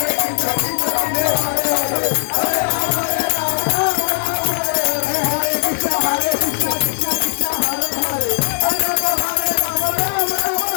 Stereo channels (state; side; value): silent; right; digital silence